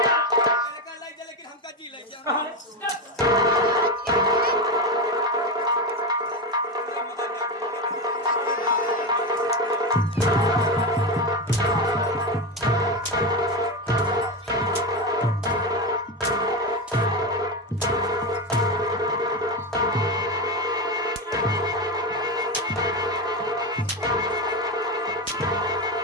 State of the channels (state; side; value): normal; both; correlation 0.15